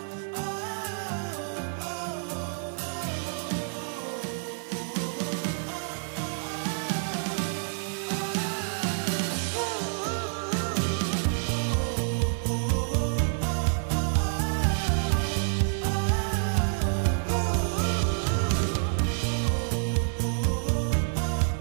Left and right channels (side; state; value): left; silent; 59 dB below the other